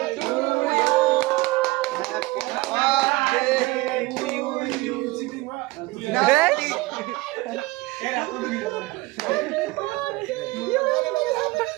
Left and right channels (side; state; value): left; quieter; 21.4 dB